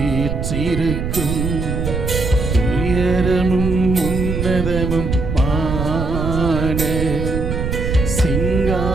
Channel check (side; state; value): right; noise; rumble, 3 dB below the sound